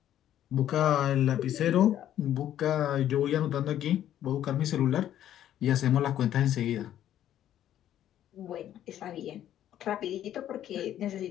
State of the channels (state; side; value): quieter; right; 11.5 dB